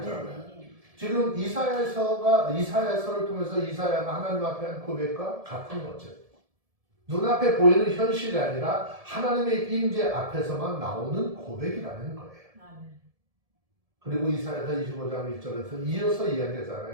지금 이사야서를 통해서 이사야가 하나님 앞에 한 고백과 같은 거죠. 눈앞에 보이는 현실이 아니라 하나님의 임재 앞에서만 나오는 고백이라는 거예요. 그리고 이사야서 25장 1절에서 이어서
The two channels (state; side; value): late; left; 1.7 ms